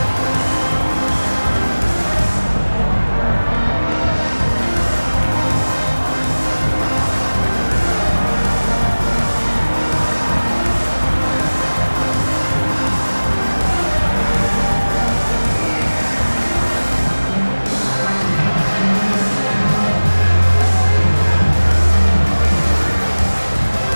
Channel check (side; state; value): both; inverted; correlation -1.00